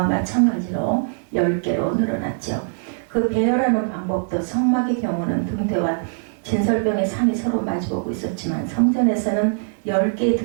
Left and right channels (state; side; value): silent; left; 64 dB below the other